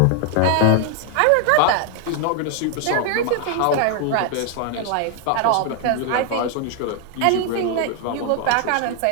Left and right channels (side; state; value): both; different; correlation 0.00